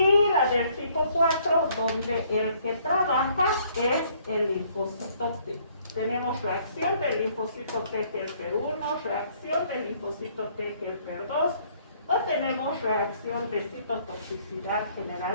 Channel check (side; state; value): both; inverted; correlation -0.63